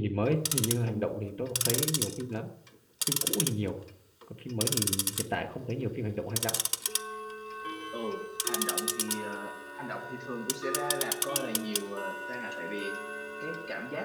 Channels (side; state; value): both; identical; correlation 1.00